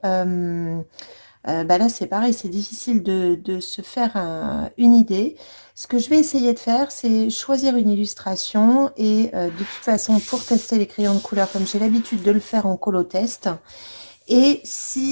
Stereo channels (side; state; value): both; inverted; correlation -1.00